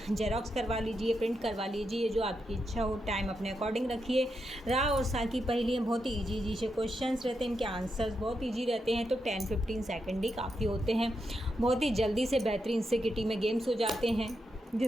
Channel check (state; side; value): normal; both; correlation 0.84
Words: जेरॉक्स करवा लीजिए, प्रिंट करवा लीजिए, जो आपकी इच्छा हो। टाइम अपने अकॉर्डिंग रखिए। रा और सा की पहेलियाँ बहुत ही ईजी से क्वेश्चंस रहते हैं, इनके आंसर्स बहुत ईजी रहते हैं। तो 10-15 सेकेंड ही काफ़ी होते हैं। बहुत ही जल्दी से बेहतरीन से किटी में गेम्स हो जाते हैं,